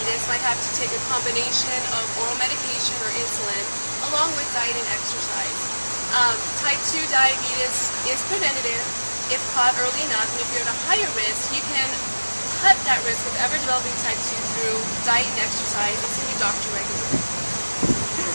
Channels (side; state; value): both; inverted; correlation -1.00